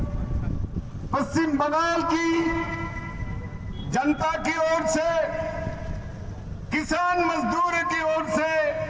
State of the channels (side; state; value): both; identical; correlation 1.00